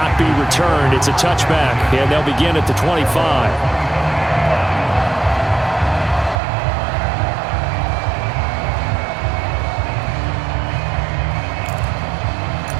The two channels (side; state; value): left; drops out; at 6.4 s